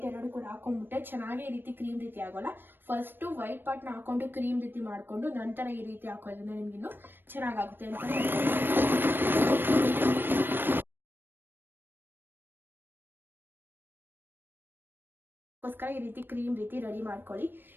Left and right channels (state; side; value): late; left; 0.097 ms